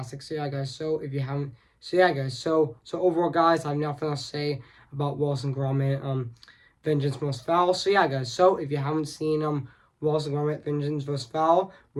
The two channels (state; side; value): identical; both; correlation 1.00